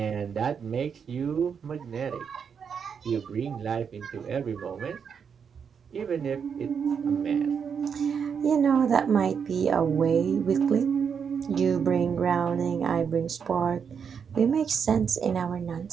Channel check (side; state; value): left; quieter; 6.8 dB